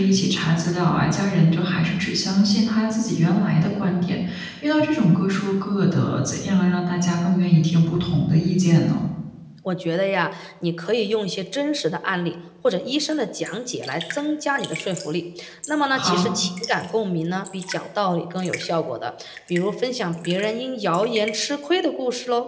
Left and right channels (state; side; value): identical; both; correlation 1.00